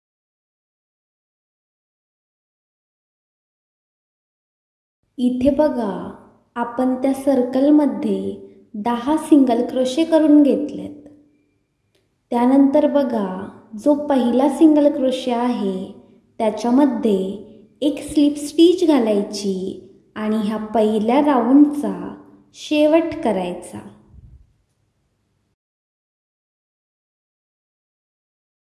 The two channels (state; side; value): identical; both; correlation 1.00